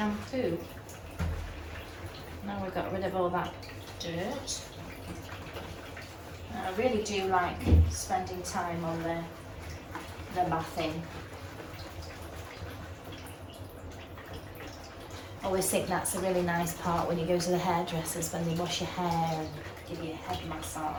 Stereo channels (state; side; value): identical; both; correlation 1.00